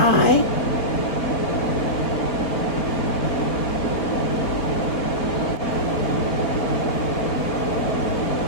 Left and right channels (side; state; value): right; late; 4.3 ms